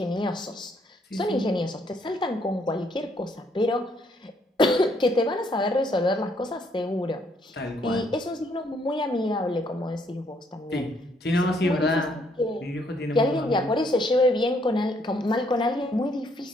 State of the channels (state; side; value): normal; both; correlation 0.70